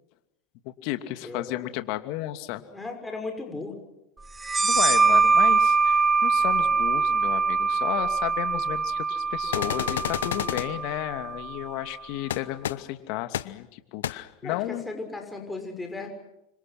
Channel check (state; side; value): normal; both; correlation 0.68